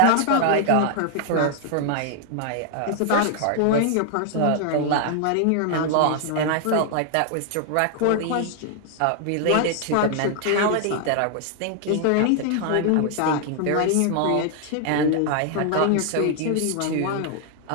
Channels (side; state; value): both; different; correlation 0.00